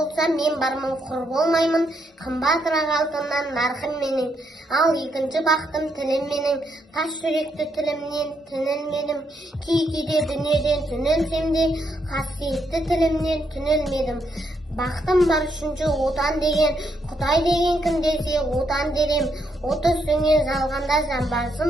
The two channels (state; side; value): normal; both; correlation 0.77